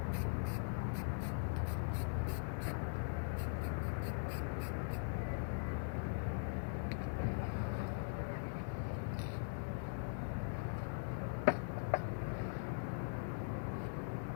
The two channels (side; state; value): right; silent; digital silence